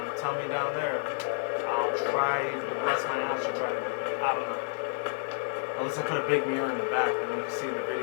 tell me down there, I'll try to bless my ass to try to do it. I don't know. Unless I put a big mirror in the back, then you can see the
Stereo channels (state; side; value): silent; right; 58 dB below the other